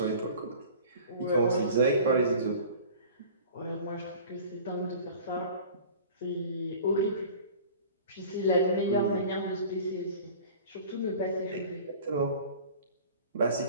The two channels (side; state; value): both; inverted; correlation -0.43